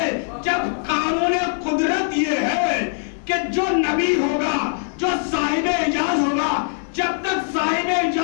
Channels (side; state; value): right; silent; 65 dB below the other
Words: جب قانون قدرت یہ ہے کہ جو نبی ہوگا، جو صاحب اعجاز ہوگا، جب تک صاحب